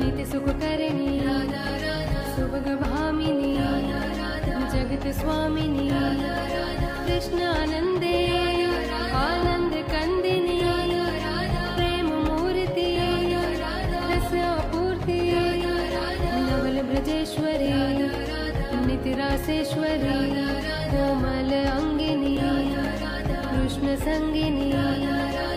सुखकरणी सुभग भामिनी जगत स्वामिनी कृष्णानंदे आनंद कंदिनी प्रेम मूर्ति रस आपूर्ति नवल ब्रजेश्वरी नित्य रासेश्वरी कोमल अंगिनी कृष्ण संगिनी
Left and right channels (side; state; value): both; identical; correlation 1.00